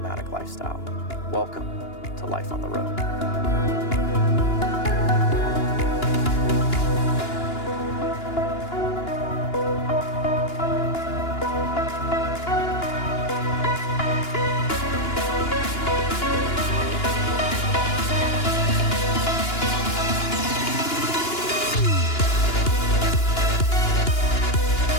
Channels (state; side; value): late; right; 2.9 ms